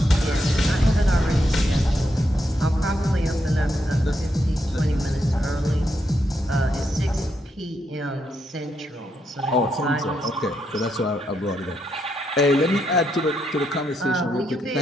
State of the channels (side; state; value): both; normal; correlation 0.80